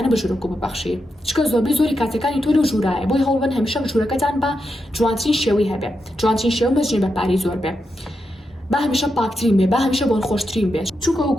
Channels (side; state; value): both; normal; correlation 0.86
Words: بە ژوورک و ببەخشی. چکە زۆری کاتەکانی تۆ لە ژوورایە، بۆی هەوڵبن هەمیشە ژوورەکەتان بە جوانترین شێوەی هەبێ، جوانترین شێوە مەزنی بە پاری زۆر بێ، با هەمیشە پاکترین بێ، با هەمیشە بۆن خۆشترین بێ. چونکە